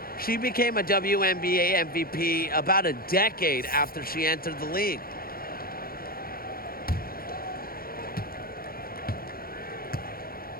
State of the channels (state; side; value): late; right; 0.43 ms